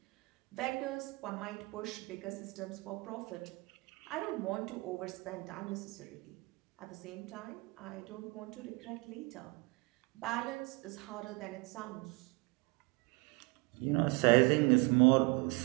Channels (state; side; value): quieter; left; 27.0 dB